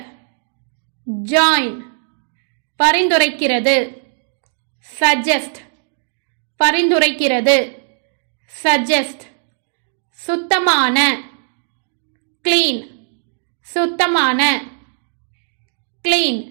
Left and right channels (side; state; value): left; silent; digital silence